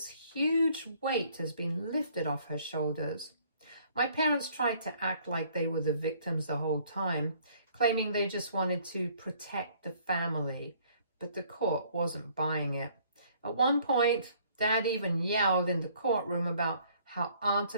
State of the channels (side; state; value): both; inverted; correlation -0.61